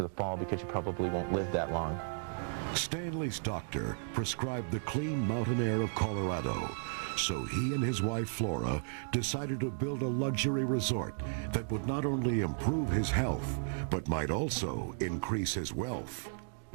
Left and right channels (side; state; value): left; silent; digital silence